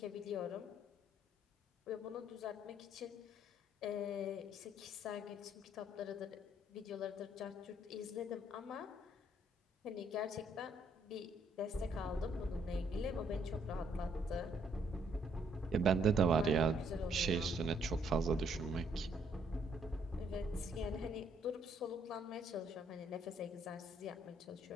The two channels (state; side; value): normal; both; correlation 0.67